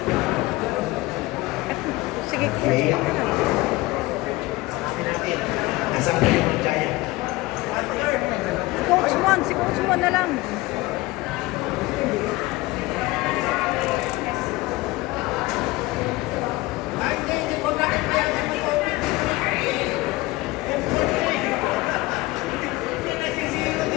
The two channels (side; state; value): right; quieter; 20.5 dB